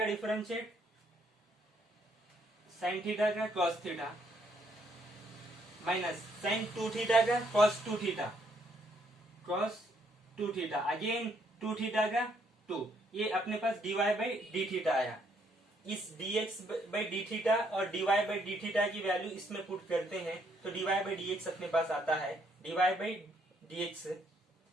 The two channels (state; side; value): normal; both; correlation 0.70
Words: डिफरेंशिएट साइन थीटा का cos theta minus sine 2 theta का cos 2 theta, cos 2 theta again 2 theta का 2, ये अपने पास dy बाई डी थीटा आया। इस dx बाई डी थीटा और dy बाई डी थीटा की वैल्यू इसमें पुट करते हैं तो dy बाई dx अपने पास आता है, dy by dx,